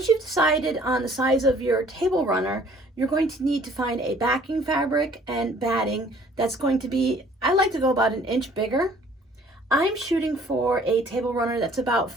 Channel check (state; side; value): normal; both; correlation 0.56